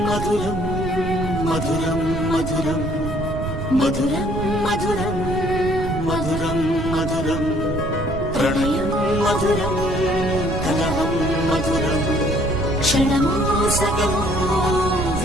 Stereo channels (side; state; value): right; noise; rumble, 6 dB below the sound